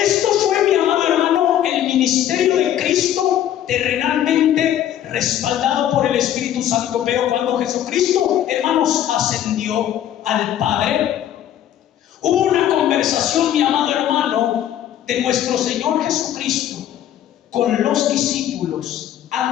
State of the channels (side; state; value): right; quieter; 11.2 dB